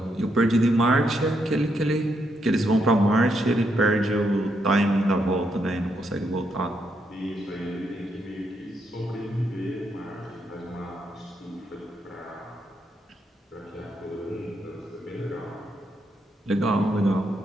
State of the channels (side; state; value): both; normal; correlation 0.78